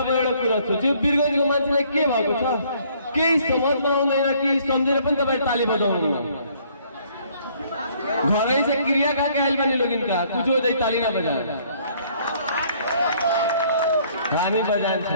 म एउटा कुरा सोच्छु वीरगञ्जको मान्छेलाई के भएको छ केही समझमा आउँदैन कि सम्झेर पनि तपाईँ ताली बजाउनु घरै से क्रिया का कहल बनी लोग इनका कुछ हो जाए ताली ना बजा हामी बजान्छ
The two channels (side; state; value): both; inverted; correlation -0.62